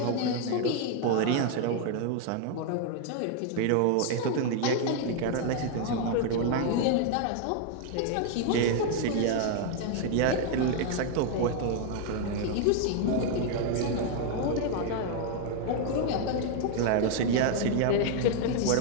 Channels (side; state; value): both; different; correlation 0.00